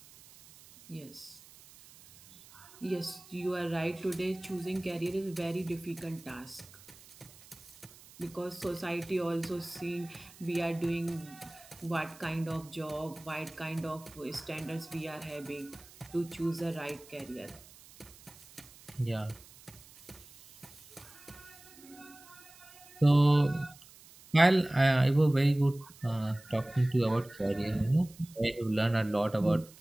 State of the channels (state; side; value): noise; right; hiss, 22 dB below the sound